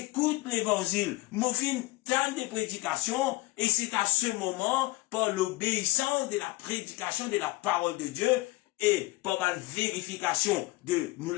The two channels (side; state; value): right; quieter; 20.7 dB